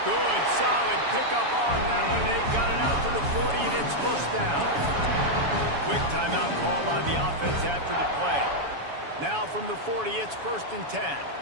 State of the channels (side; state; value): left; late; 7.1 ms